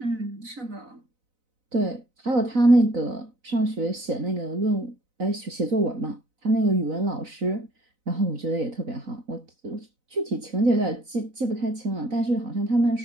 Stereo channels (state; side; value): late; left; 4.0 ms